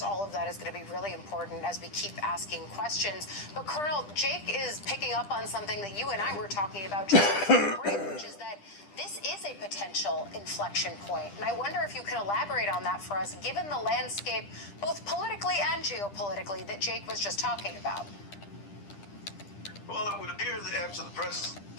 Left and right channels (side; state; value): right; late; 10 ms